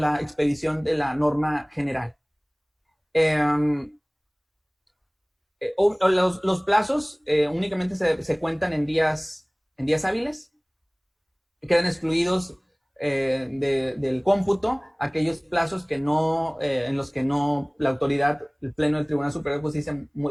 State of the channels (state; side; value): identical; both; correlation 1.00